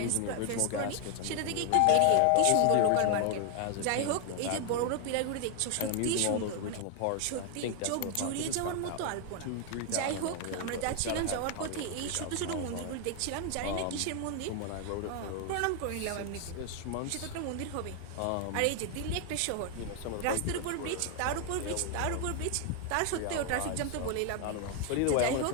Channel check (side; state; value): both; different; correlation 0.00